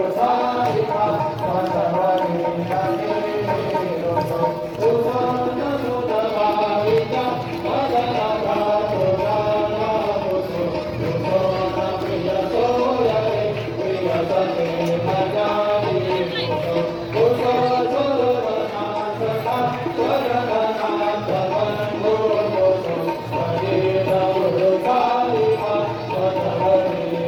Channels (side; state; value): both; identical; correlation 1.00